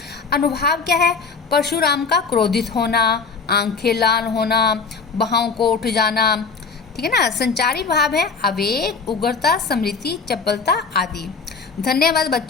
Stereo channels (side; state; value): right; quieter; 5.0 dB